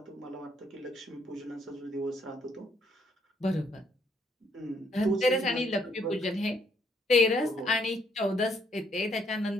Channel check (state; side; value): normal; both; correlation 0.70